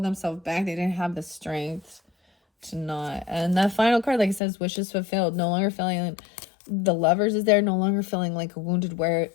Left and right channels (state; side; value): drops out; right; at 4.4 s